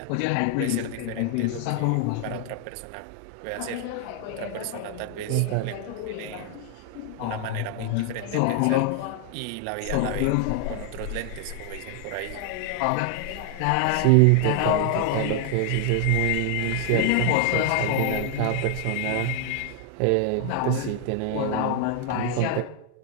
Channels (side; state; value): both; different; correlation 0.00